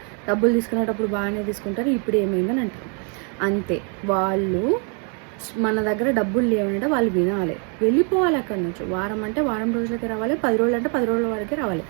డబ్బులు తీసుకునేటప్పుడు బాగానే తీసుకుంటారు, ఇప్పుడు ఏమైందని అంటారు. అంతే, వాళ్ళు మన దగ్గర డబ్బులు లేవంటే వాళ్ళు వినాలి, వెళ్ళిపోవాలి అక్కడి నుంచి. వారం అంటే వారం రోజులకి రావాలి, 10 రోజులు అంటే 10 రోజుల వరకే రావాలి.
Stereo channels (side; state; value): left; quieter; 39.1 dB